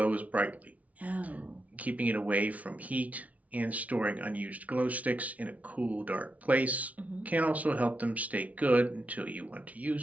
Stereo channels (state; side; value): late; left; 0.069 ms